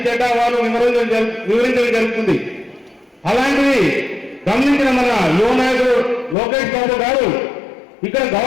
చెడ్డ వాళ్ళు వివరించడం జరుగుతుంది. అలాంటిది గమనించిన మన యువ నాయకుడు లోకేష్ బాబు గారు ఇక్కడ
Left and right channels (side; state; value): right; drops out; at 6.4 s